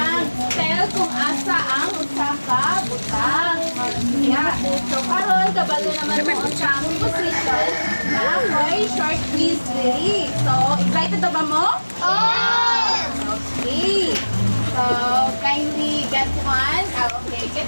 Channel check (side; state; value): both; inverted; correlation -1.00